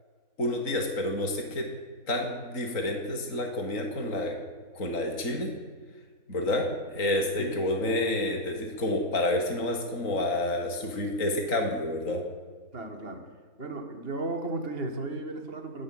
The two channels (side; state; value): right; late; 3.9 ms